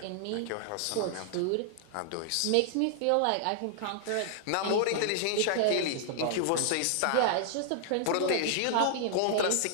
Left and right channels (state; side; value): different; both; correlation -0.01